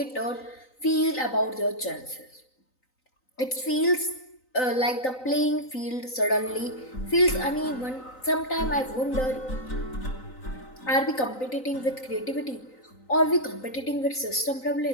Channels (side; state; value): right; late; 3.9 ms